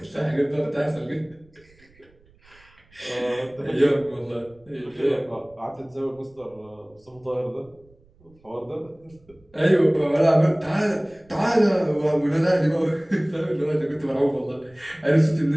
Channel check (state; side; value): noise; right; rumble, 30 dB below the sound